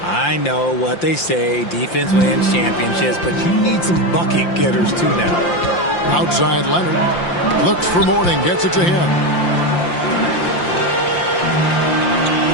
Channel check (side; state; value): right; late; 5.8 ms